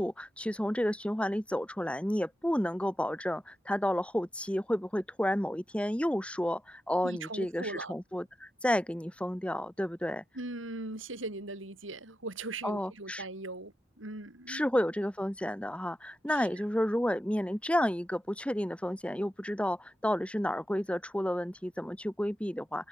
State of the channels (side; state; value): both; normal; correlation 0.91